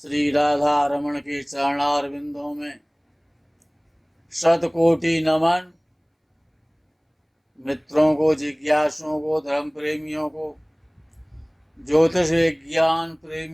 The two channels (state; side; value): identical; both; correlation 1.00